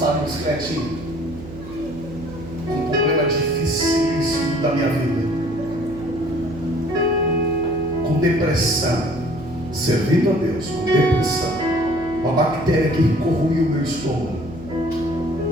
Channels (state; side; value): noise; right; hum, 14 dB below the sound